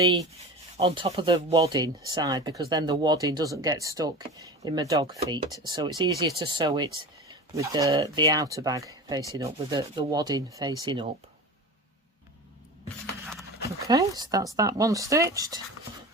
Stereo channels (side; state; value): both; normal; correlation 0.31